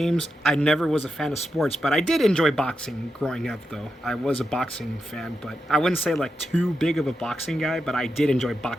I never was a fan of sports, but I did enjoy boxing growing up, though. I was a boxing fan, but I wouldn't say like too big of a boxing guy, but I did enjoy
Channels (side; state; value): both; normal; correlation 0.87